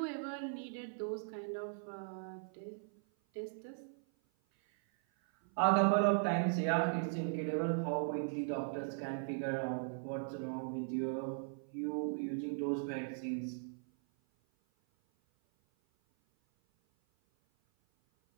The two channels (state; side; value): silent; left; 52 dB below the other